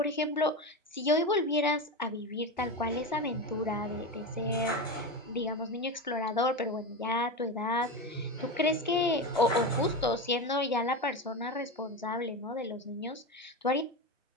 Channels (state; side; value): normal; both; correlation 0.19